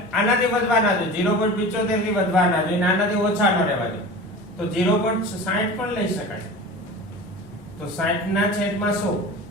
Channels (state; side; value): noise; right; rumble, 26 dB below the sound